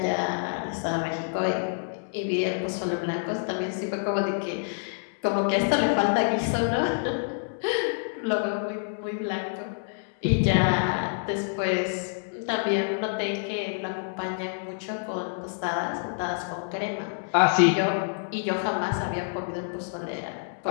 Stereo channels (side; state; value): right; silent; digital silence